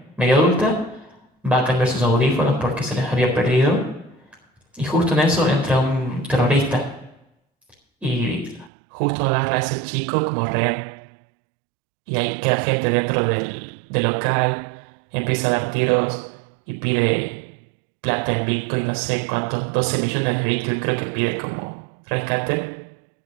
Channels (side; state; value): left; drops out; at 8.7 s